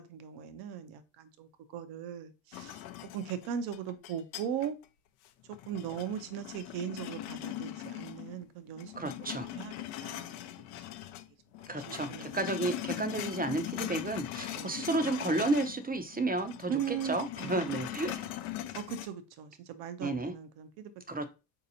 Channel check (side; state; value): both; normal; correlation 0.31